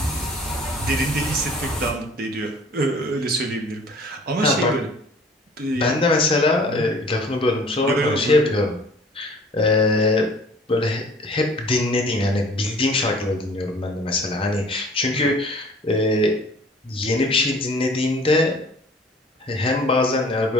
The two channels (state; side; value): normal; both; correlation 0.50